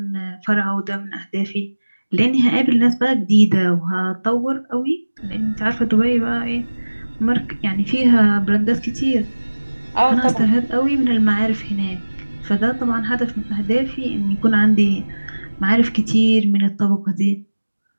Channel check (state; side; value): inverted; both; correlation -1.00